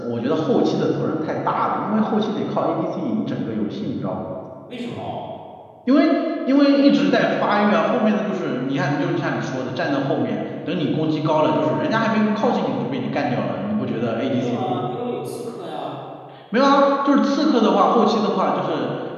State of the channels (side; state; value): both; identical; correlation 1.00